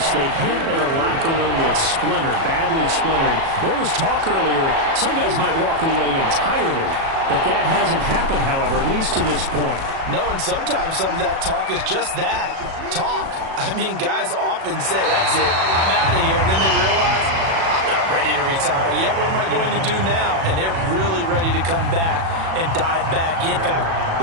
they hint at a locker room that's splintered, badly splintered. There was talk earlier, some guys might walk away entirely. But that hasn't happened, however, at least to this point. No, and sometimes some of that talk is just that, talk. I mean, guys often say, that's it, I'm out of here. And then they realize, I'm not ready to retire yet. What am I going to do now? And they're really ready to come back and dive back in. In fact,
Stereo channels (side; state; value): left; late; 37 ms